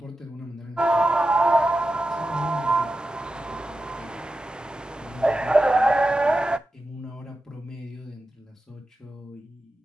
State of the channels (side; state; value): both; normal; correlation 0.91